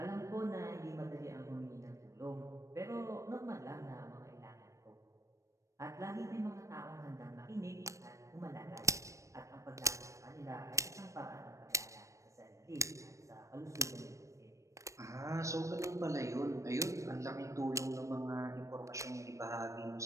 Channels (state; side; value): late; left; 0.15 ms